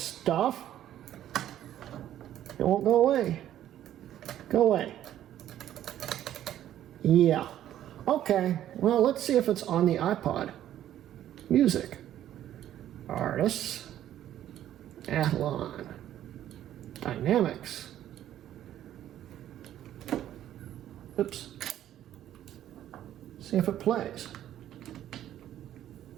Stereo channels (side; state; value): left; quieter; 11.8 dB